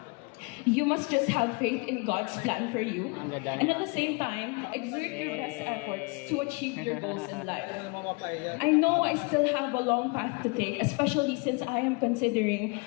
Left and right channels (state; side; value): quieter; right; 30.6 dB